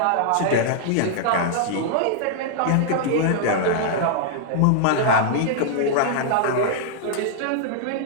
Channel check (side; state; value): both; different; correlation -0.01